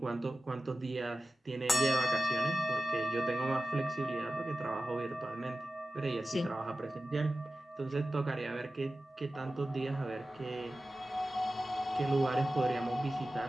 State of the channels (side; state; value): both; normal; correlation 0.94